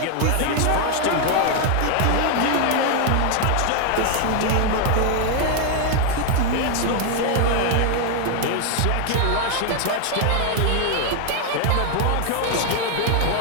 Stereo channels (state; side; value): different; both; correlation 0.00